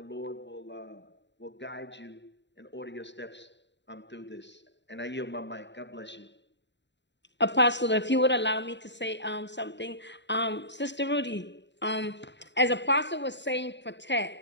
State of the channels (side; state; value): right; late; 0.52 ms